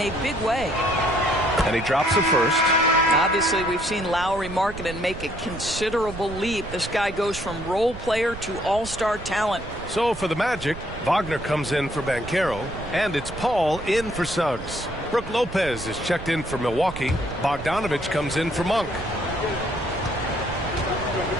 big way. And he drops the first. Obviously, we've seen Lowry Markkanen make a considerable leap. This guy goes from role player to all-star talent. So for the Magic, Wagner comes in for Banchero, and it's Paul in for Suggs. Brook Lopez is checked in for Milwaukee. Bogdanovich comes in for Monk.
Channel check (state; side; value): noise; right; rumble, 12 dB below the sound